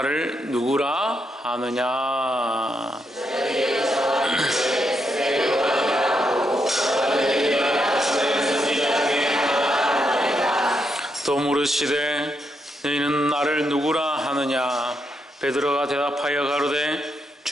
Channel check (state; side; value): normal; both; correlation 0.80